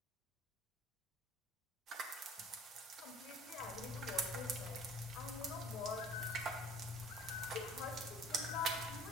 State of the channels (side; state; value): both; normal; correlation 0.50